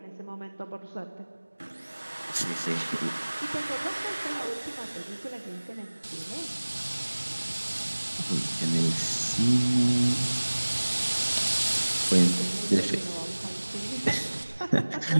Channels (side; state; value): both; inverted; correlation -1.00